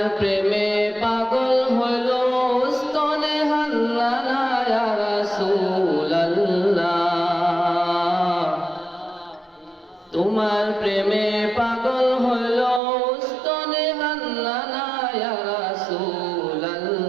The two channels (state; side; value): drops out; left; at 12.8 s